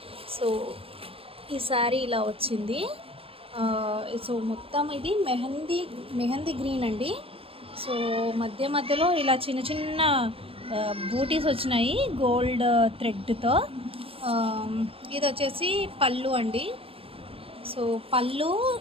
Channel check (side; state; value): left; late; 0.27 ms